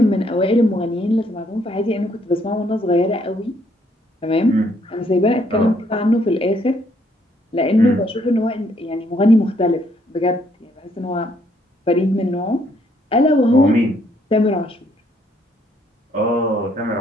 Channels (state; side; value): normal; both; correlation 0.69